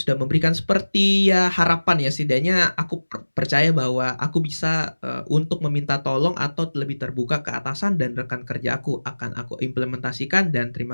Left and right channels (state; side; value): inverted; both; correlation -1.00